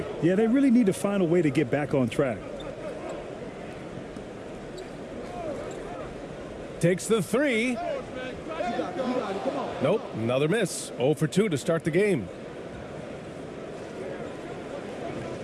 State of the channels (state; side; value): identical; both; correlation 1.00